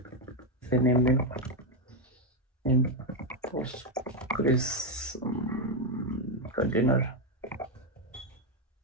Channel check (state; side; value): normal; both; correlation 0.05